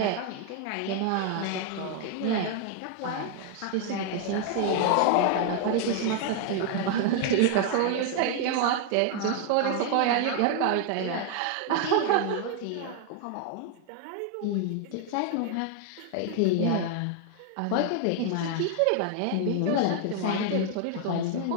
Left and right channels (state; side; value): different; both; correlation 0.00